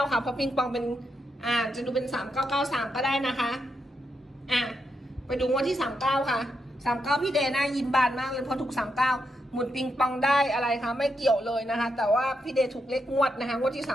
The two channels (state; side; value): normal; both; correlation 0.83